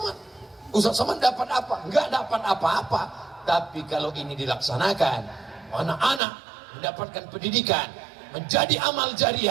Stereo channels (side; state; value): left; drops out; at 6.2 s